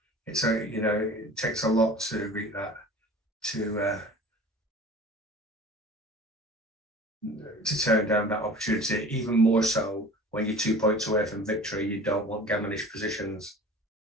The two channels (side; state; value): both; normal; correlation 0.42